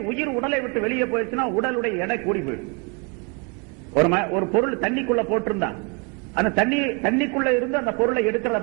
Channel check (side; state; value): left; quieter; 32.0 dB